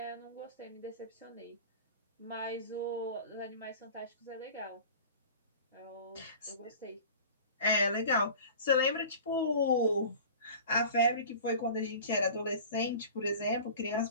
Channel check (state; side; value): inverted; both; correlation -0.40